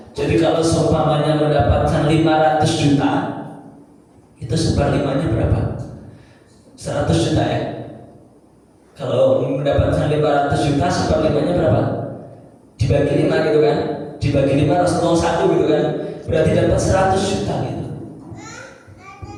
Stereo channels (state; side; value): identical; both; correlation 1.00